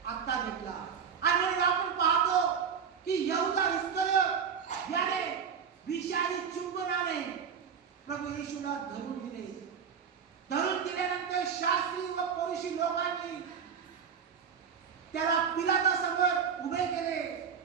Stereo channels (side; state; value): left; quieter; 7.0 dB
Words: आता घेतला. आणि म्हणून आपण पाहतो की यहुदा इस्करियोत याने विषारी चुंबनाने प्रभू येशूला धरून दिले. धरून दिल्यानंतर शास्त्री व फरीसी लोकांनी त्याला पिलातासमोर उभे केले.